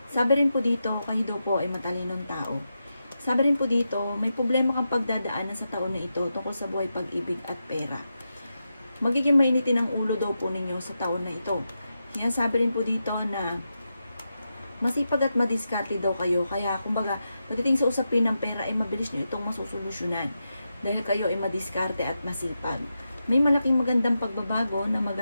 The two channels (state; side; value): inverted; both; correlation -0.88